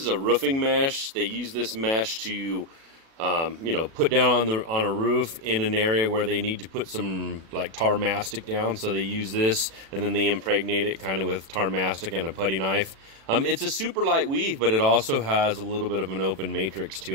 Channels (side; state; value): left; late; 36 ms